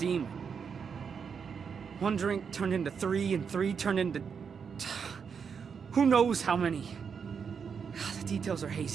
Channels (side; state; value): left; quieter; 6.4 dB